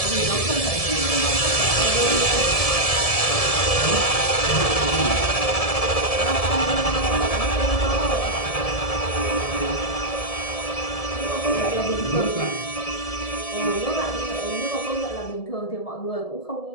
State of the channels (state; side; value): late; right; 1.7 ms